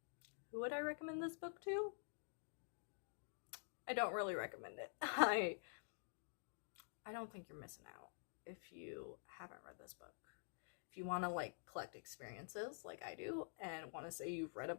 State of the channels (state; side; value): silent; right; digital silence